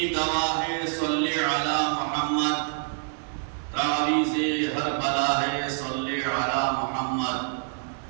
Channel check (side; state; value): left; silent; 58 dB below the other